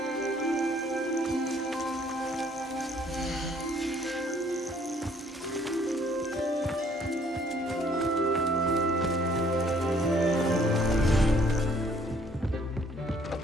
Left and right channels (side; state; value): both; normal; correlation 0.62